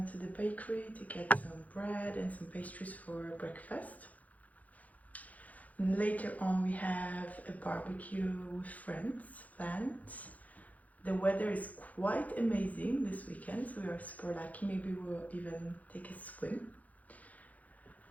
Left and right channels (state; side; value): late; right; 0.075 ms